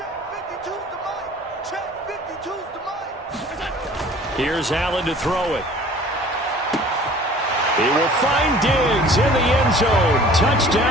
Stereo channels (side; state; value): both; normal; correlation 0.48